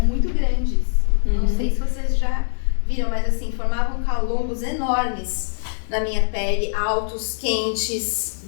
muito grandes. Não sei se vocês já viram, mas assim, formavam calombos enormes na minha pele, altos, quentes,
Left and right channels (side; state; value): right; silent; 56 dB below the other